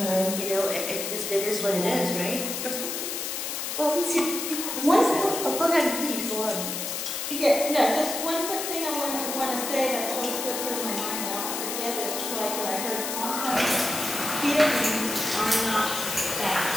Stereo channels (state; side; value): noise; left; hiss, 4 dB below the sound